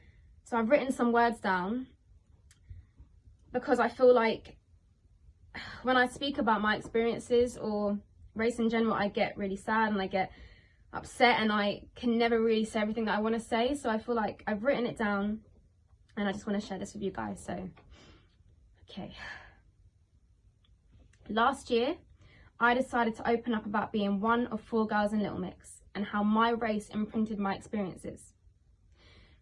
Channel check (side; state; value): both; identical; correlation 1.00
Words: So I've written some words down because I feel like when I speak about my experiences or race in general, I get really sad and I get upset and I can never really say everything that I want to say. So I feel like I've written it down and I just want to share this with you guys. So, okay. Last year, I decided to open up about being one of 4 girls in Little Mix and how my race imprinted my experiences.